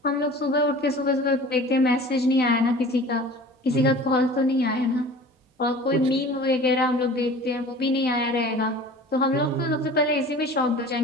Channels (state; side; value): normal; both; correlation 0.42